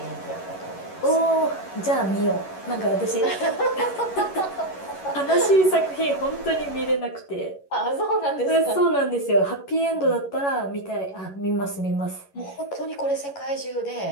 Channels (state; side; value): late; right; 11 ms